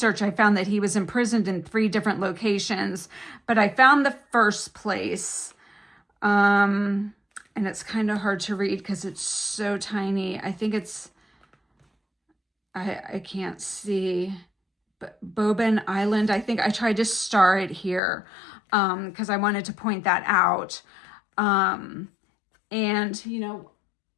I found that he was imprisoned in 3 different locations, but I found the first place. And it's kind of hard to read because it's so tiny. I think it's, I can't see, but Boban Island. I think I tried to star it here because I wanted to point that out. And, you know,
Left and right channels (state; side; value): drops out; right; at 18.0 s